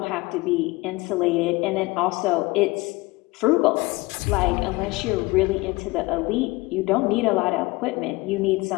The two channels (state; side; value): quieter; right; 22.4 dB